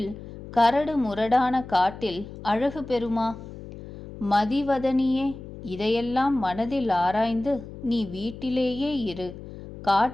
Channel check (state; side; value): noise; left; hum, 14 dB below the sound